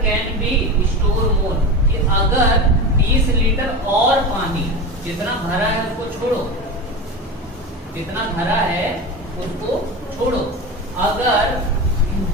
can be store more, कि अगर 20 लीटर और पानी, जितना भरा है उसको छोड़ो, जितना भरा है उसको छोड़ो, अगर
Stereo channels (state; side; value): normal; both; correlation 0.25